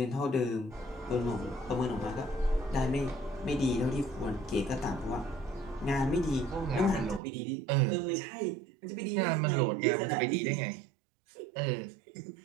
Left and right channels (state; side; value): drops out; left; at 7.2 s